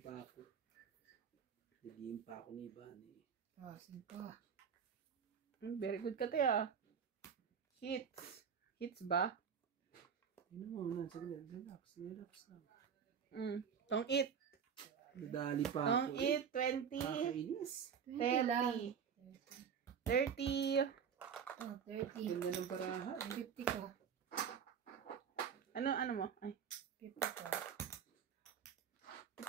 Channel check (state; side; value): quieter; left; 7.3 dB